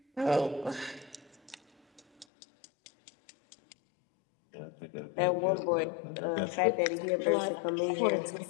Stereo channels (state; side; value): drops out; right; at 2.2 s